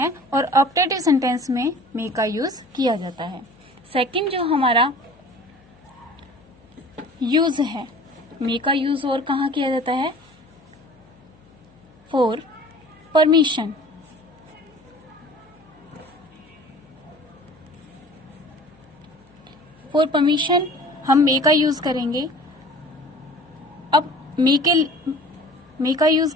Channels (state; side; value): noise; left; hum, 29 dB below the sound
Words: और ऑप्टेटिव सेंटेंस में मे का यूज किया जाता है। सेकंड जो हमारा यूज है, मे का यूज और कहाँ किया जाता है? For permission. फॉर परमिशन हम मे का यूज करेंगे। अब मे का यूज